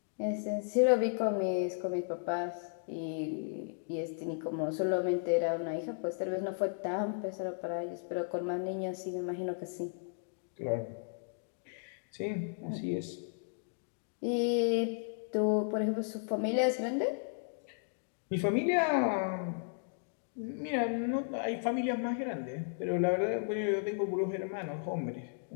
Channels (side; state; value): right; silent; digital silence